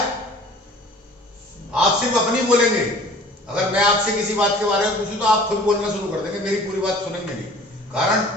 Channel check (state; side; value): normal; both; correlation 0.48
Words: आप सिर्फ अपनी बोलेंगे। अगर मैं आपसे किसी बात के बारे में पूछूं तो आप खुद बोलना शुरू कर देंगे, मेरी पूरी बात सुनेंगे नहीं।